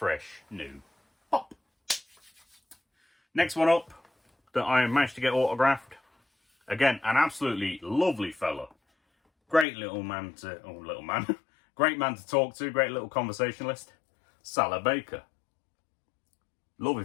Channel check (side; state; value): right; drops out; at 9.7 s